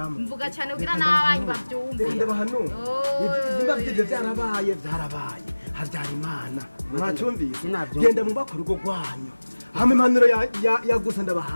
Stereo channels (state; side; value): inverted; both; correlation -1.00